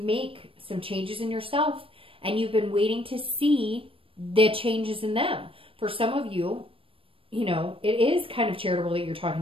some changes in yourself, and you've been waiting to see the changes in them. For some of you, you know, it is kind of charitable that you're talking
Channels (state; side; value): late; left; 0.26 ms